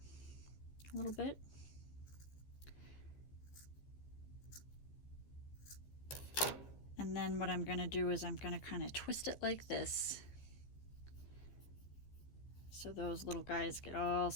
a little bit. And then what I'm going to do is I'm going to kind of twist it like this, so those little guys get all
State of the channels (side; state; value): right; late; 14 ms